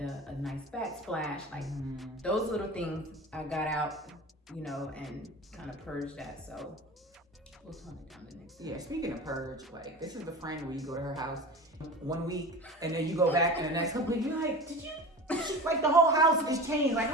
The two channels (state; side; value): normal; both; correlation 0.33